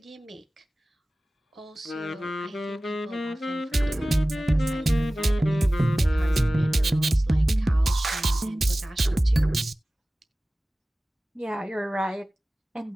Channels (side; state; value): both; normal; correlation 0.97